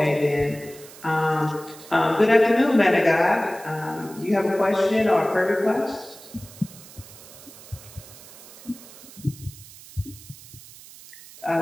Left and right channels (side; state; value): right; noise; hiss, 19 dB below the sound